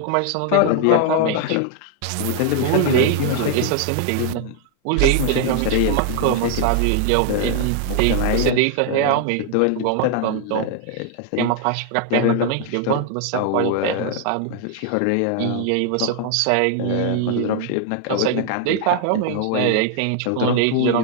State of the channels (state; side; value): different; both; correlation 0.00